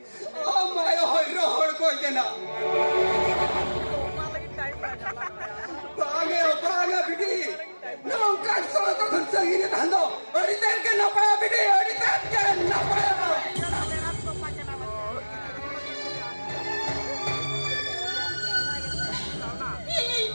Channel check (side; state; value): both; inverted; correlation -1.00